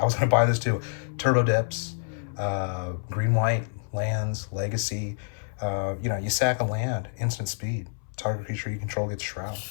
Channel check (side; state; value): right; silent; 60 dB below the other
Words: was going to buy this too. Turbo Depths, green-white lands, legacy. You know, you sack a land, instant speed. Target creature you control gets Shroud.